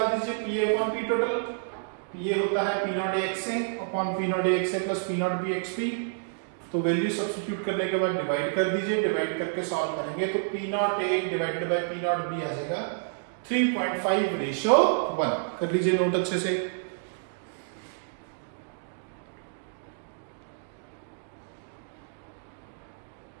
दीजिए, P A upon P total. P A होता है P naught A x A upon P naught A x A plus P naught B x B. तो वैल्यू सब्स्टिट्यूट करने के बाद डिवाइड कर दीजिए, डिवाइड करके सॉल्व करेंगे तो P naught A divided by P naught B आ जाएगा 3.5 रेशियो 1। कर लीजिए नोट अच्छे से।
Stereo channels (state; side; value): silent; left; digital silence